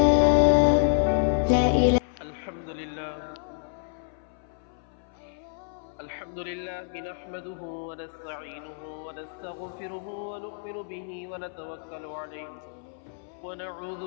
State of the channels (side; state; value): right; silent; 59 dB below the other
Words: لا إله. الحمد لله نحمده ونستعينه ونستغفره ونؤمن به ونتوكل عليه ونعوذ